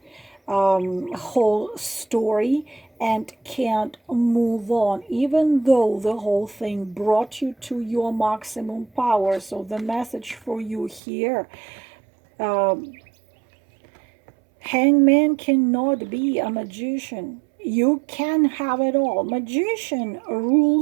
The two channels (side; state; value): left; drops out; at 11.0 s